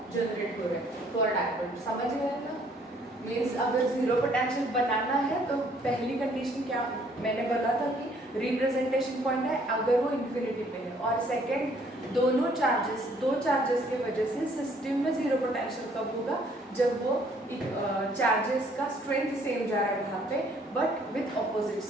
जनरेट हो रहा है फॉर डायपोल, समझ गए ना। मीन्स अगर जीरो पोटेंशियल बनाना है तो पहली कंडीशन क्या मैंने बोला था कि रिप्रेजेंटेशन पॉइंट है अगर वो इन्फिनिटी पे है, और सेकंड दो चार्जेस के वजह से सिस्टम में जीरो पोटेंशियल कब होगा, जब वो चार्जेस का स्ट्रेंथ सेम जा रहा है वहाँ पे बट विथ ऑपोजिट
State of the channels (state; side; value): normal; both; correlation 0.62